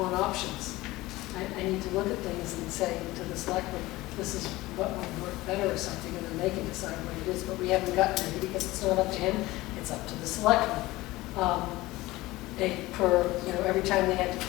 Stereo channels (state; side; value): quieter; right; 19.0 dB